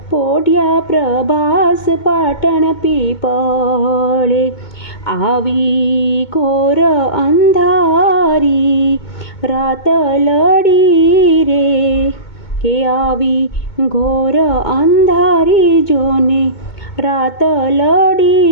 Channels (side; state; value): right; late; 2.2 ms